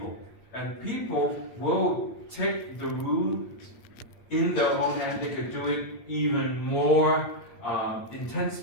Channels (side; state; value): right; late; 8.7 ms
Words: And people will take the rule in their own hand. They could do it even more